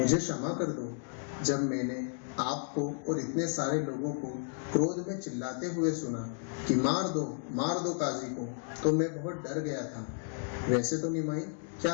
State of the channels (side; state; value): right; silent; 56 dB below the other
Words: क्षमा कर दो। जब मैंने आपको और इतने सारे लोगों को क्रोध में चिल्लाते हुए सुना कि मार दो काजी को, तो मैं बहुत डर गया था। वैसे तो निमाई, क्या